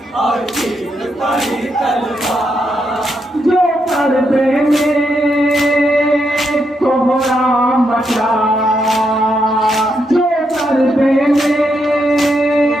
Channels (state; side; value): normal; both; correlation 0.80